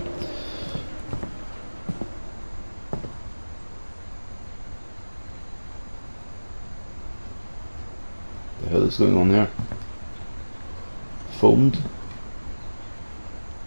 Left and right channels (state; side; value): inverted; both; correlation -1.00